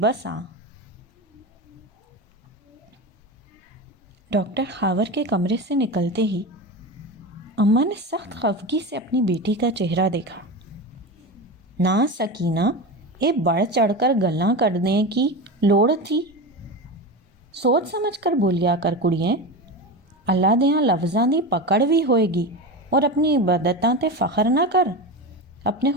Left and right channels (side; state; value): both; normal; correlation 0.23